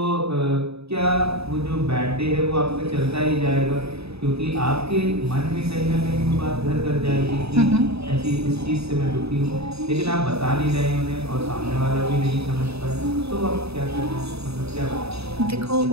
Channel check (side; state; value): left; late; 0.79 ms